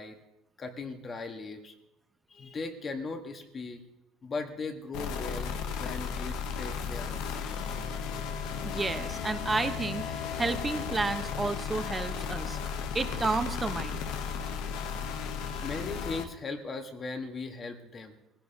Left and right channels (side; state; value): both; normal; correlation 0.68